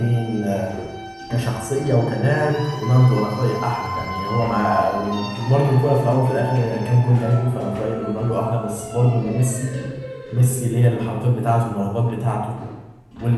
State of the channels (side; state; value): both; identical; correlation 1.00